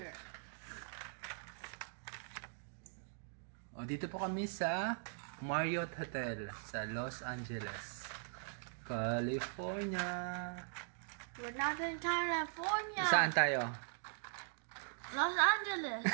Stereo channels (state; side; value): silent; left; digital silence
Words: O, dito po kami sa Marriott Hotel sa Los Angeles, California. We're not in California. Saan tayo? Los Angeles.